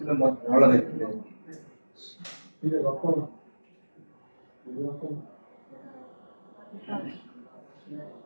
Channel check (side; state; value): both; inverted; correlation -1.00